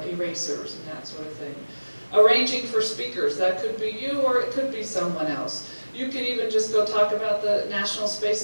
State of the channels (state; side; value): inverted; both; correlation -1.00